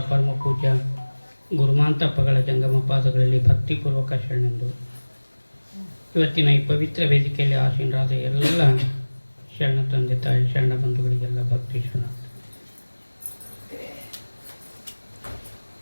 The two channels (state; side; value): inverted; both; correlation -1.00